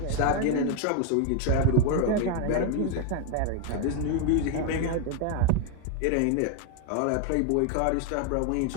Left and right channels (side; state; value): both; different; correlation 0.01